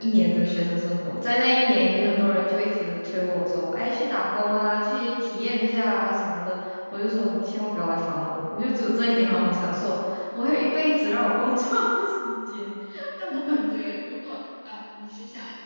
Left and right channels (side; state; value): both; inverted; correlation -1.00